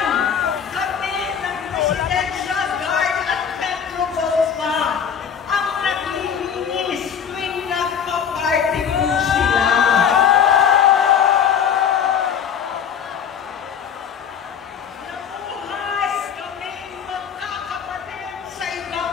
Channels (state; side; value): quieter; right; 7.7 dB